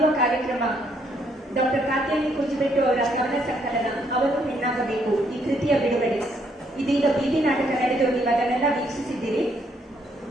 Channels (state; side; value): normal; both; correlation 0.71